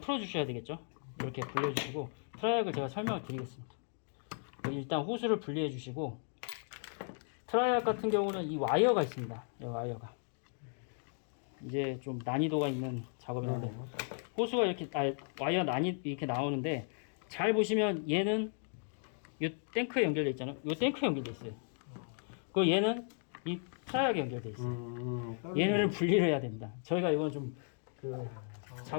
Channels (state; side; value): silent; right; 54 dB below the other